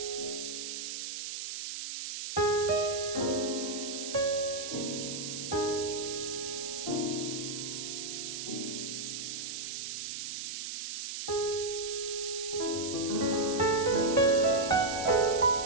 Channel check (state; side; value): noise; right; hiss, 5 dB below the sound